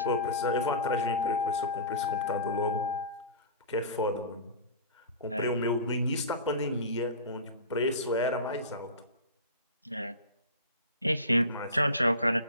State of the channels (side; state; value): both; inverted; correlation -0.32